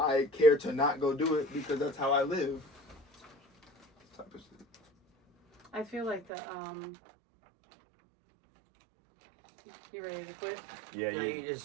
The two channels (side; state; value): left; drops out; at 6.2 s